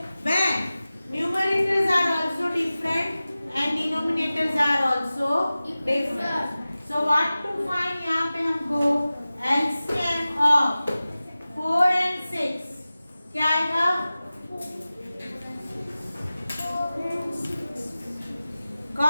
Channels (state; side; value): inverted; both; correlation -0.96